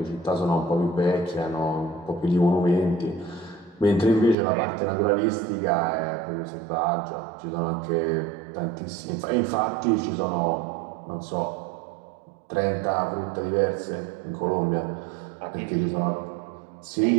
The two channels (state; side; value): drops out; left; at 4.4 s